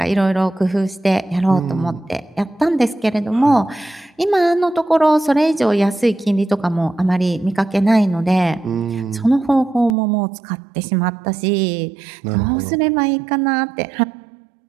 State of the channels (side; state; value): left; drops out; at 10.0 s